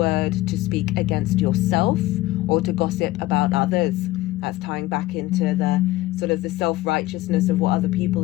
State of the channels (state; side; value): quieter; right; 17.5 dB